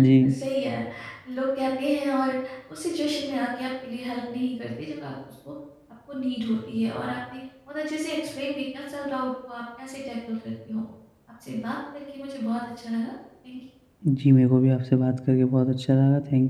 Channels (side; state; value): both; identical; correlation 1.00